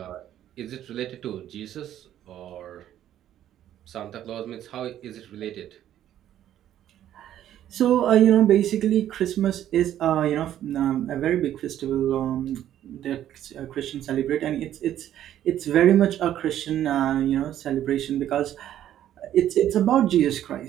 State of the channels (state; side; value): quieter; left; 11.5 dB